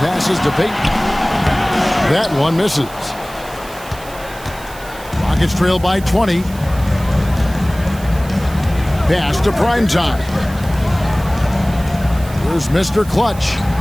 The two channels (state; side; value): noise; right; hiss, 18 dB below the sound